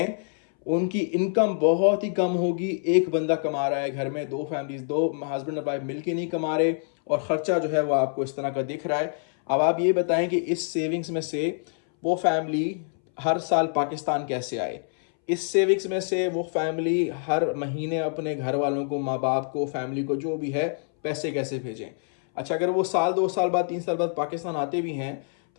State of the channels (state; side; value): silent; right; 61 dB below the other